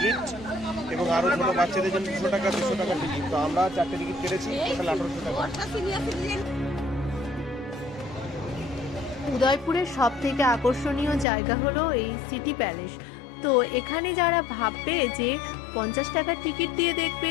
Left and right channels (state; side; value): drops out; right; at 11.2 s